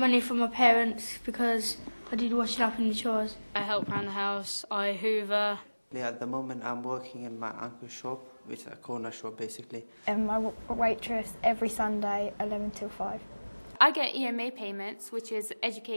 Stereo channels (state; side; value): inverted; both; correlation -1.00